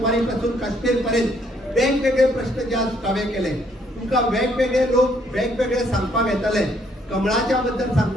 पासून काश्मीर पर्यंत वेगवेगळे प्रश्न जे हांवें केले तुमकां वेगवेगळे लोक वेगवेगळे सांगपाक येताले कमळाच्या बद्दल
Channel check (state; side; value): normal; both; correlation 0.68